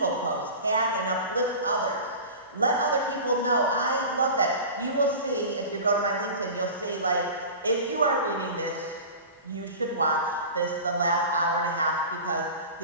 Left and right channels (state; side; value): inverted; both; correlation -0.34